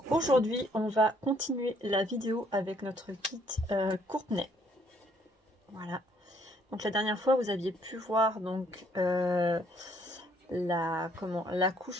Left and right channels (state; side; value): normal; both; correlation 0.66